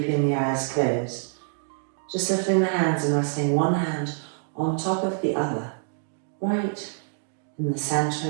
the eyes closed, just lifting the hands and resting one hand on top of the other, right in the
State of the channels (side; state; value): left; silent; digital silence